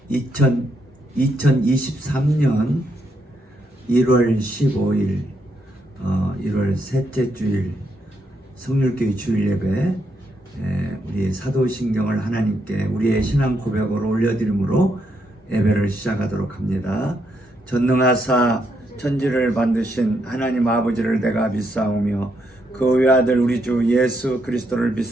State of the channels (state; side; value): normal; both; correlation 0.78